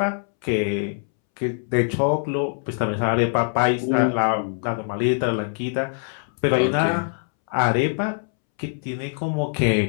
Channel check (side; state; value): right; silent; 63 dB below the other